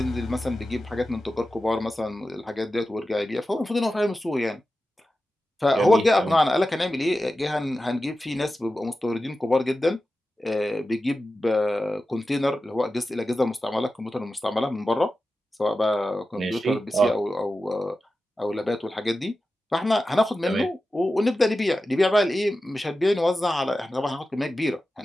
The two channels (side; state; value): both; normal; correlation 0.93